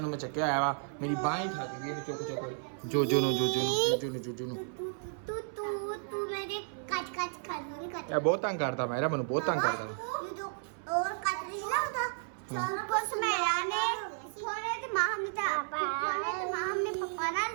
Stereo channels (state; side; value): silent; left; 56 dB below the other